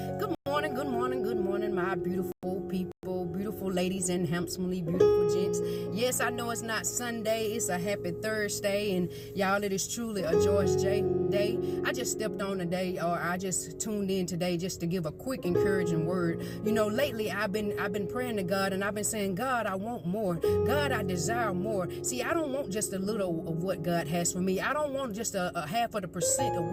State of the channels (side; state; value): both; identical; correlation 1.00